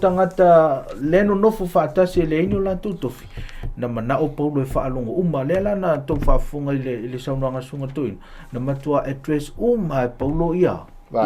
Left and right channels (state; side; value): identical; both; correlation 1.00